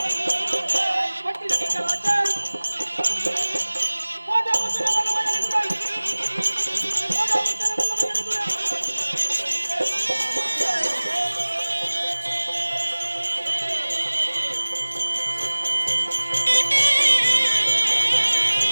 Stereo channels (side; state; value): both; inverted; correlation -1.00